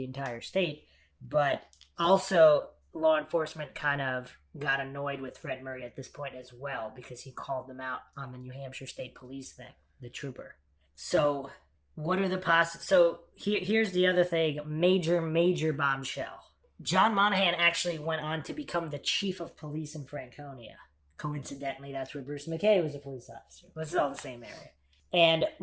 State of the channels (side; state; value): both; identical; correlation 1.00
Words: entire state. But also law enforcement kind of got annoyed with Fred Murray at this point as well, because he called them out on the New Hampshire State Police thing, the trooper. So what are the So here's the other thing, major bombshell. John Monaghan actually went on to become the chief of police in Franconia. Coincidentally, that's where Bruce McKay was a police officer. This is all the same area. And